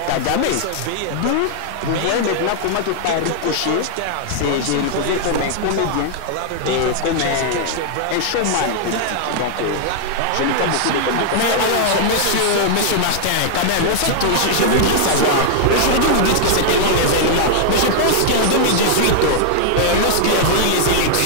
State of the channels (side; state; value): both; different; correlation -0.01